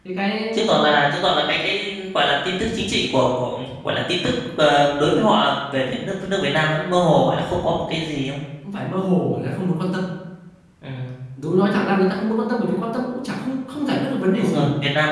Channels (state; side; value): identical; both; correlation 1.00